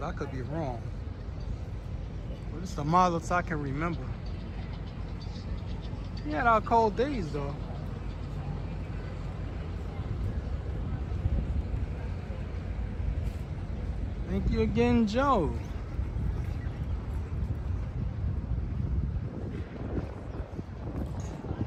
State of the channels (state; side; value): identical; both; correlation 1.00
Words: I could be wrong. But it's the mildest I can remember. We had our cold days though. Thank you again, Joe.